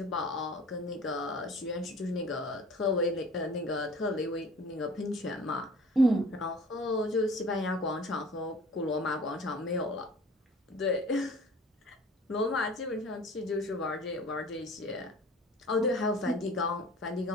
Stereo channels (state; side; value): normal; both; correlation 0.45